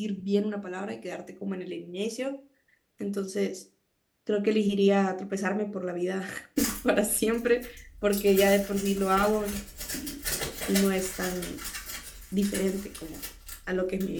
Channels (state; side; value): identical; both; correlation 1.00